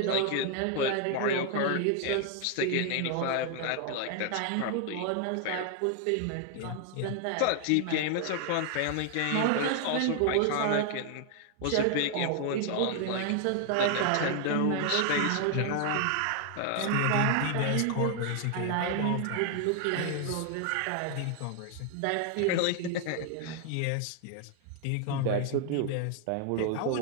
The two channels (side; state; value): both; different; correlation 0.00